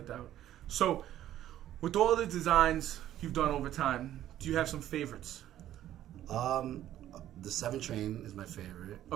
doubt. So, with all the designs you've done over time, do you have some favorites? The 7 train is my favorite.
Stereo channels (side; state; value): left; quieter; 12.4 dB